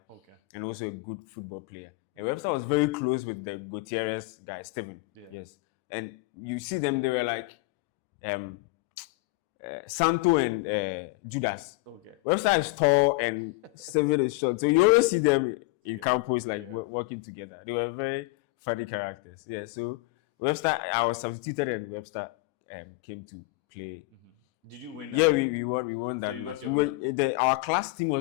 Okay. And also a good football player. And Webster was very close with the Gutierrez guy, Steven. Yeah. Yes. And you see them, they were like Santo and Judas. Okay. Webster is tall and Steven is short. So you always see them in campus working together. They were very funny characters. Yeah. So Webster, I was substituted and Webster came to play. Did you win that? Yeah, we won that. So you got your money? Our class team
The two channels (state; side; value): quieter; right; 23.3 dB